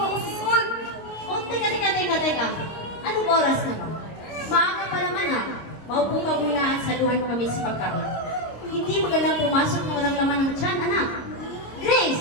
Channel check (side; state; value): right; late; 26 ms